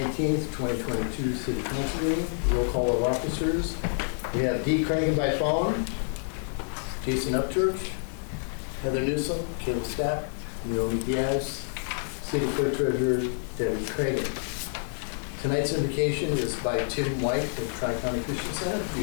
2022 City Council meeting. Roll call of officers. We have Dee Cragen by phone, Jason Upchurch, Heather Newsom, Caleb Stapp, Naomi Diaz, City Clerk Treasurer Debbie Cragen. Tonight's invocation is by Tim White at Tri-County Christian Center.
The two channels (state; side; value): silent; right; 57 dB below the other